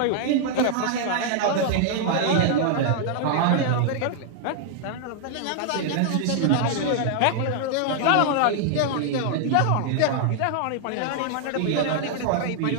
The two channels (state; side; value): different; both; correlation -0.01